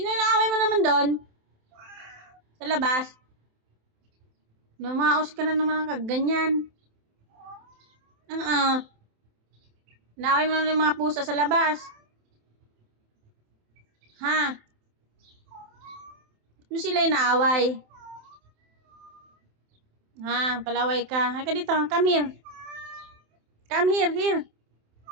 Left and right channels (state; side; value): late; left; 27 ms